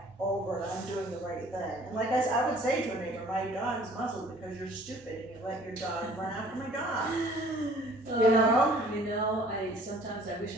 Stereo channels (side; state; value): both; normal; correlation 0.53